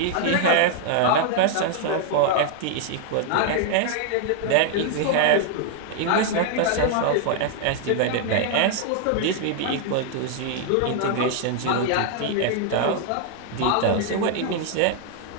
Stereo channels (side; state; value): both; different; correlation 0.00